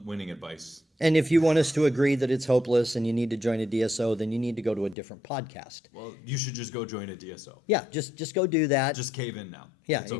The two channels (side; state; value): right; drops out; at 5.0 s